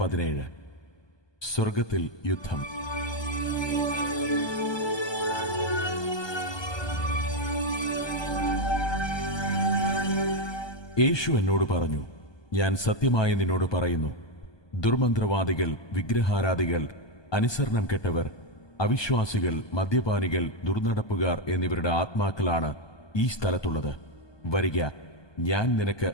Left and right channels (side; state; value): right; late; 1.2 ms